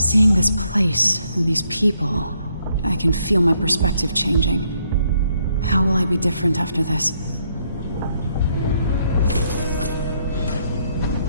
this place and these people, I can feel my perspective changing. How will I be different after this?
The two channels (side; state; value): both; inverted; correlation -0.73